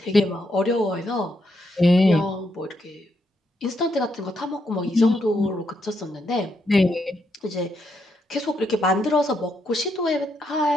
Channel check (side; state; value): both; normal; correlation 0.79